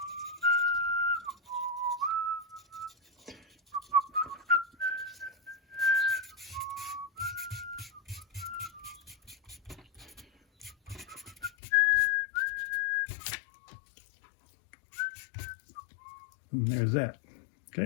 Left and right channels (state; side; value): drops out; right; at 11.5 s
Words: And there's that.